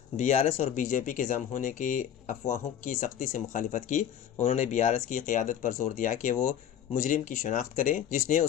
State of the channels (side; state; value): right; quieter; 9.7 dB